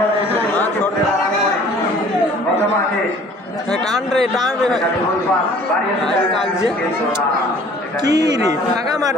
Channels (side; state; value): both; normal; correlation 0.52